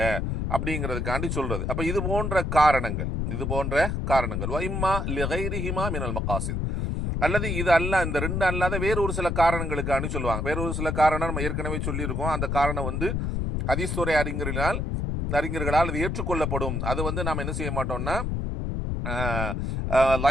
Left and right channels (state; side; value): noise; left; rumble, 1 dB below the sound